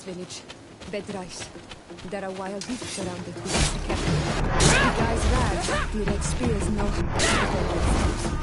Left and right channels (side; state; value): both; identical; correlation 1.00